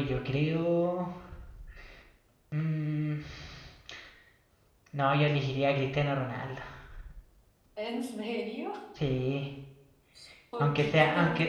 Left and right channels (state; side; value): identical; both; correlation 1.00